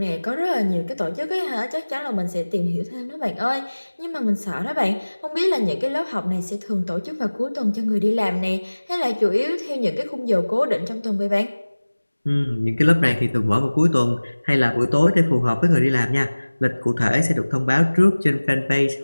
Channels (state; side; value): inverted; both; correlation -1.00